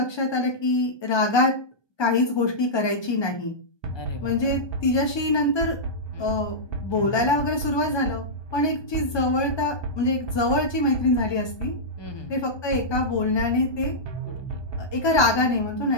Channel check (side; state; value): right; late; 1.2 ms